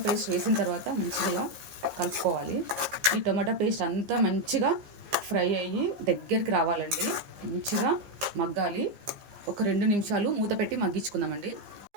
పేస్ట్ వేసిన తర్వాత మంచిగా ఇలా కలుపుకోవాలి. ఈ టొమాటో పేస్ట్ అంతా మంచిగా ఫ్రై అయ్యి దగ్గరికి రావాలండి. మంచిగా మగ్గాలి. ఒక 2 నిమిషాలు మూత పెట్టి మగ్గించుకుందామండి.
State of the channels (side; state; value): left; late; 15 ms